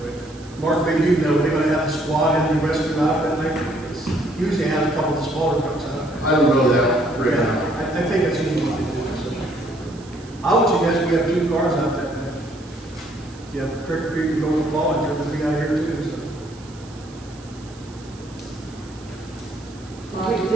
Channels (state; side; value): noise; right; hiss, 23 dB below the sound